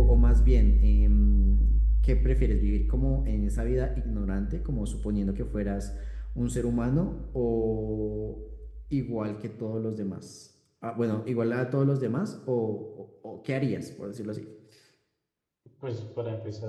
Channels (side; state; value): both; identical; correlation 1.00